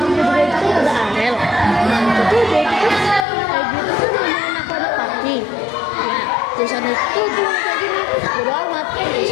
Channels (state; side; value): drops out; right; at 3.2 s